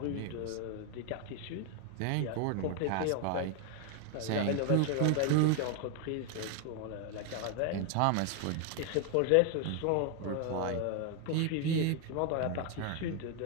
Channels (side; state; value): both; different; correlation 0.01